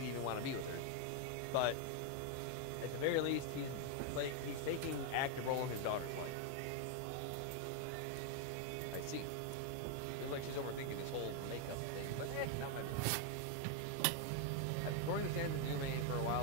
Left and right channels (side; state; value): both; different; correlation 0.01